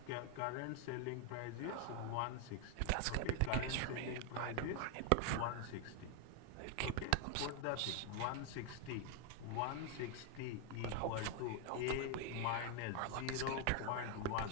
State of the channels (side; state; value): both; different; correlation 0.01